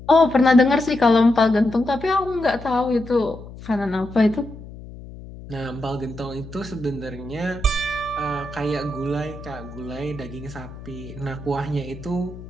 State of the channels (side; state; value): left; noise; hum, 15 dB below the sound